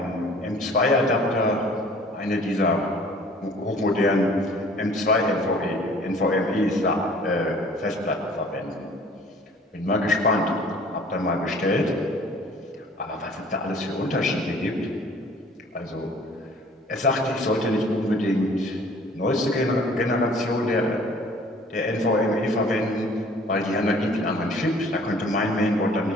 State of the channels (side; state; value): both; normal; correlation 0.52